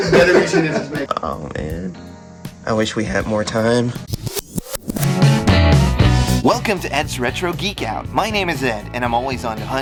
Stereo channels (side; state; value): both; identical; correlation 1.00